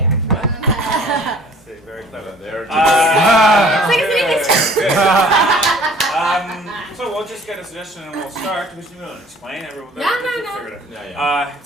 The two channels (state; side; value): normal; both; correlation 0.52